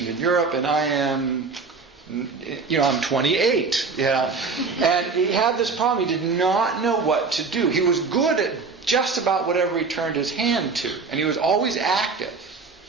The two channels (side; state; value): left; quieter; 4.5 dB